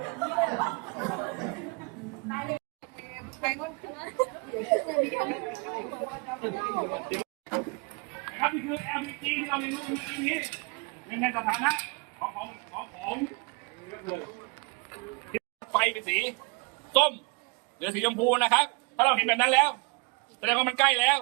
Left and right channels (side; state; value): left; quieter; 31.8 dB